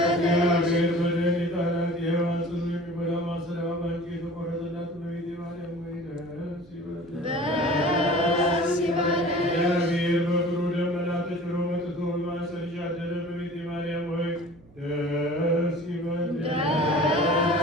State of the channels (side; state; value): right; noise; hum, 25 dB below the sound